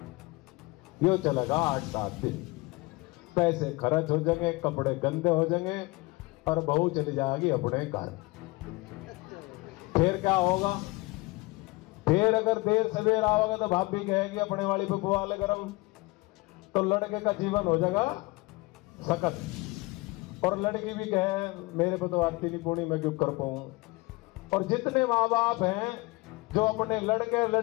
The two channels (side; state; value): right; quieter; 23.5 dB